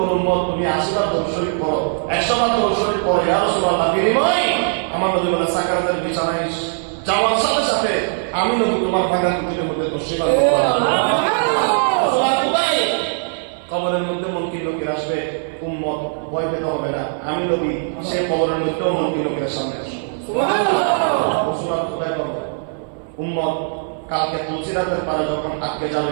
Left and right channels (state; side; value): silent; left; 57 dB below the other